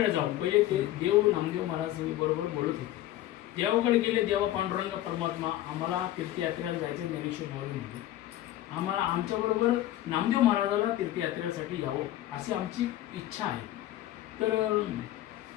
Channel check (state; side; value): quieter; right; 14.1 dB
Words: जाऊ. पहिले ते देव नामदेव महाराज बरोबर बोलत होते. देवाकडे गेले. देवा पांडुरंग परमात्मा, आम्हाला तीर्थयात्रेला जायचं. ज्ञानेश्वर माऊली म्हणते, आम्हाला आमच्याबरोबर नामदेव महाराजाला तीर्थयात्रेसाठी यावं अशी आमची इच्छा आहे. तर